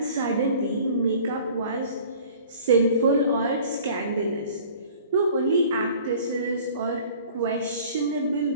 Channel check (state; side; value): inverted; both; correlation -0.48